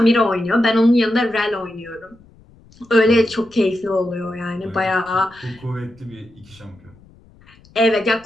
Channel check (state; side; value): noise; left; rumble, 27 dB below the sound